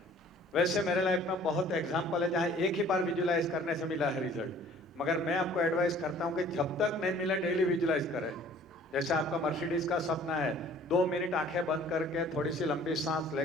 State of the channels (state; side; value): normal; both; correlation 0.52